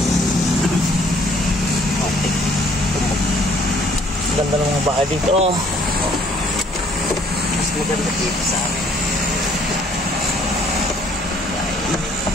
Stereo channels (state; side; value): normal; both; correlation 0.61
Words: Ganda ng mga bahay dito. Mas maganda dito sa amin.